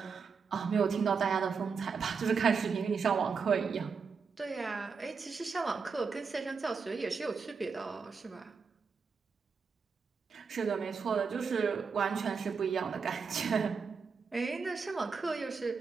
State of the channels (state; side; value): quieter; left; 5.5 dB